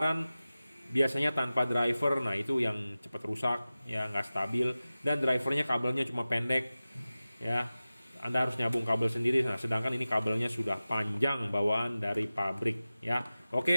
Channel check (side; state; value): both; inverted; correlation -0.96